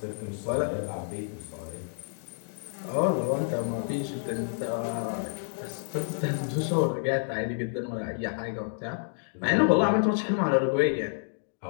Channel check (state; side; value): silent; right; digital silence